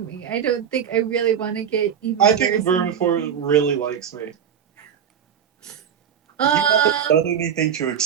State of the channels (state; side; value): quieter; left; 8.3 dB